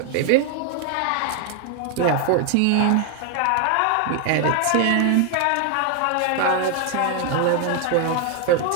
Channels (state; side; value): different; both; correlation 0.00